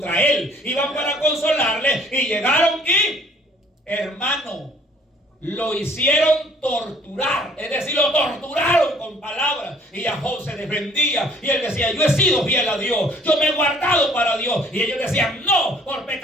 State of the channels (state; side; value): normal; both; correlation 0.57